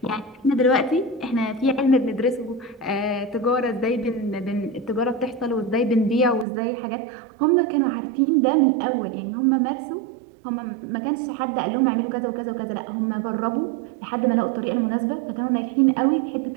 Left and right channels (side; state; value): left; drops out; at 6.5 s